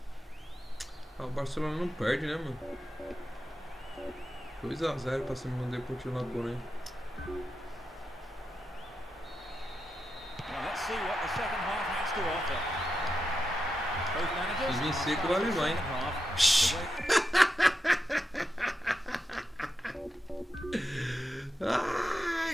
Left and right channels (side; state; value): both; normal; correlation 0.88